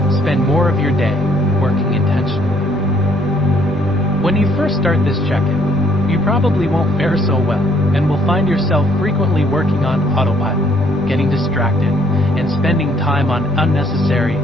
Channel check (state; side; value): normal; both; correlation 0.65